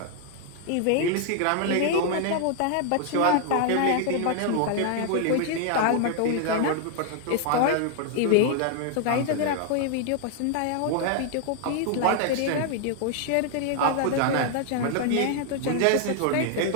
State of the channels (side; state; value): both; different; correlation 0.00